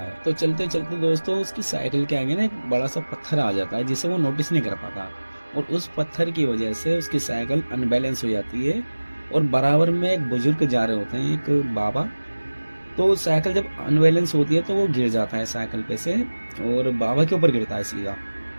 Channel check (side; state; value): both; inverted; correlation -1.00